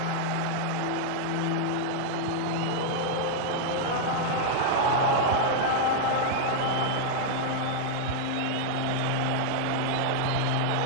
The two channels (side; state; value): both; different; correlation -0.01